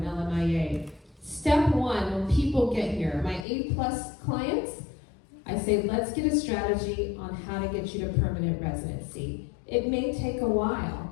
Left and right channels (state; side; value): drops out; right; at 3.5 s